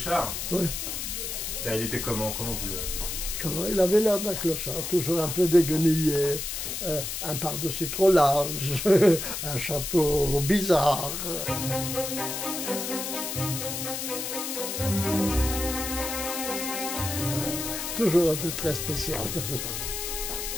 Oui. Il était comment? Comment vous le... Il avait l'air d'un clochard, toujours un peu déguenillé, un par-dessus trop large, un chapeau bizarre. Toujours un peu très spécial,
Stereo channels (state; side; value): noise; left; hiss, 4 dB below the sound